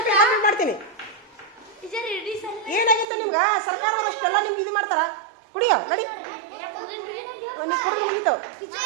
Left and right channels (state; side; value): drops out; left; at 3.1 s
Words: ಕಾಮೆಂಟ್ ಮಾಡ್ತೀನಿ ಏನಾಗಿತ್ತು ನಿಮ್ಗೆ ಸರ್ಕಾರದವ್ರು ಅಷ್ಟೆಲ್ಲ ನಿಮ್ಗೆ ಇದು ಮಾಡ್ತಾರ ಕುಡಿಯೋ ನಡಿ ನೀವು ಕುಡಿದ್ರೆ ಮುಗೀತು